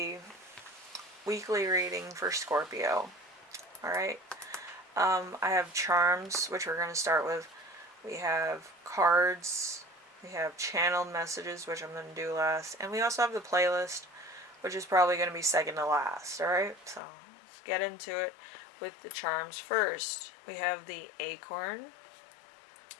weekly reading for Scorpio. Alright, I have charms, which we're going to start with. We have cards, we have channeled messages, which I'm going to do last, and we also have the playlist, which is probably going to be second to last. Alright, so let's get into it with the charms first. We have the acorn,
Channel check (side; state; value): right; drops out; at 17.0 s